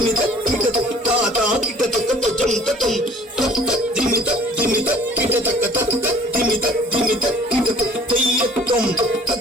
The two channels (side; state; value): both; normal; correlation 0.52